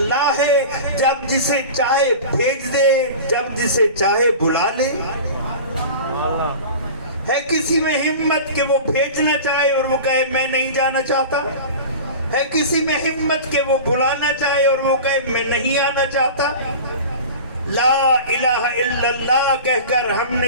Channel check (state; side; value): inverted; both; correlation -0.34